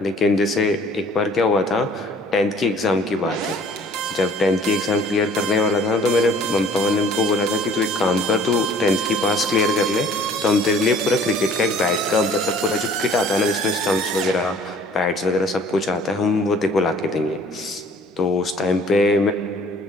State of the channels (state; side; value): normal; both; correlation 0.53